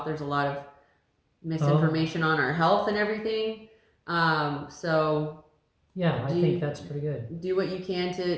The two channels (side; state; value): both; identical; correlation 1.00